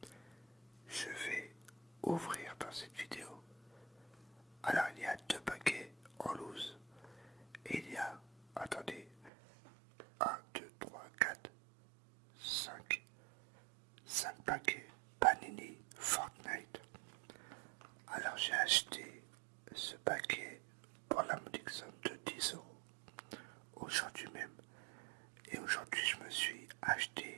je vais ouvrir dans cette vidéo. Alors il y a deux paquets en loose et il y a, attendez, 1, 2, 3, 4, 5 paquets Panini Fortnite. Alors j'ai acheté ce paquet pour la modique somme de 10 € aujourd'hui même. Et aujourd'hui je me suis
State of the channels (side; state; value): left; drops out; at 9.3 s